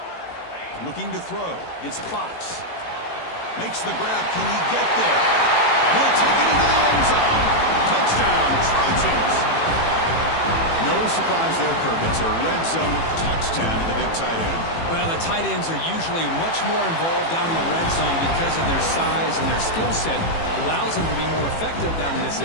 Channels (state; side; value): late; right; 18 ms